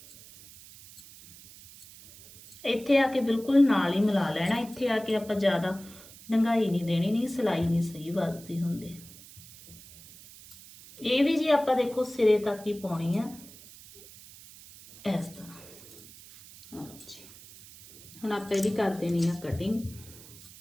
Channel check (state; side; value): noise; right; hiss, 19 dB below the sound